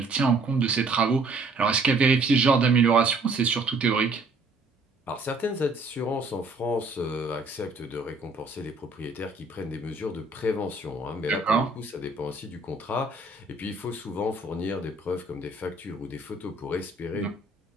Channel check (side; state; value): left; quieter; 3.1 dB